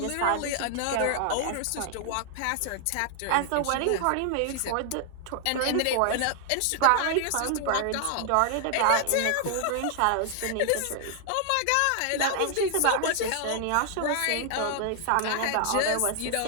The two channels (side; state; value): both; different; correlation 0.00